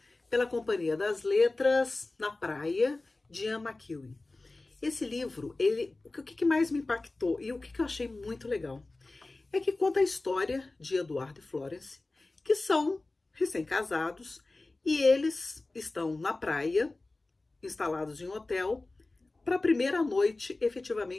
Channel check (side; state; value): right; quieter; 3.1 dB